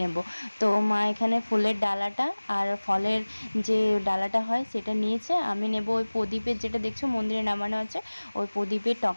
তো মা এখানে ফুলের ডালাটা আর ফলের যে ডালাটা হয় সেটা নিয়েছে, আমি নেব ওই প্রদীপের, যেটা দেখছো মন্দিরে নামানো আছে, ওই প্রদীপের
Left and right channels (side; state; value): both; inverted; correlation -1.00